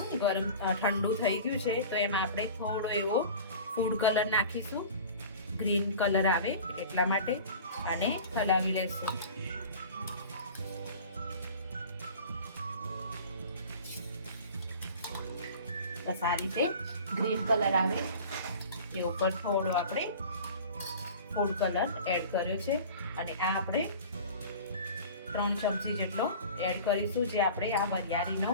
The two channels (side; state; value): both; inverted; correlation -0.40